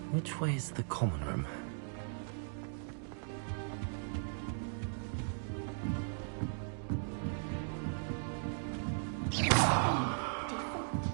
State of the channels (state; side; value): silent; left; digital silence